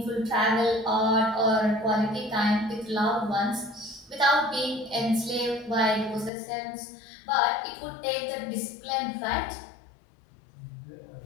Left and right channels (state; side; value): drops out; right; at 6.3 s